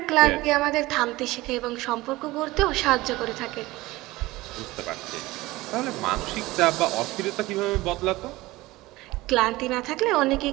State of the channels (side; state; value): left; quieter; 19.4 dB